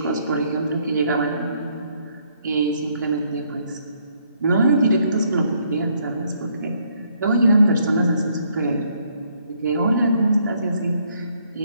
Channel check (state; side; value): inverted; both; correlation -0.70